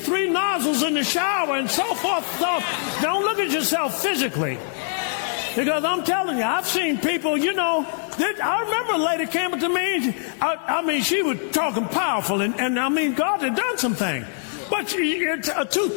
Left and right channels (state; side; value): silent; right; digital silence